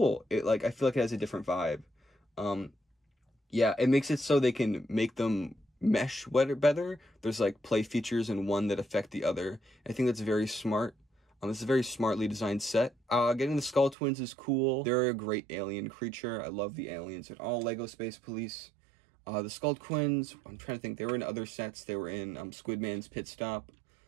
I feel like it has a different vibe. Yeah, it makes it so they can make them mesh better. There's like play features in one that affect the other. I think that's very smart. This is a very smartly designed set. Getting the Skull Twins is cool. They're a great alien creature. I love the aliens in all Lego Space Police. The Skull Twins, I'm trying to think, they were in other sets. They were in Squidman's Pit Stop,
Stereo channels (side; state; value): left; drops out; at 14.0 s